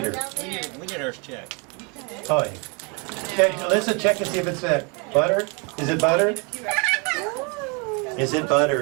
We need ours checked. Oh, yeah. Okay, Alyssa, check and see if it's butter. Is it butter? Is it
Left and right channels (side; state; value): left; quieter; 32.7 dB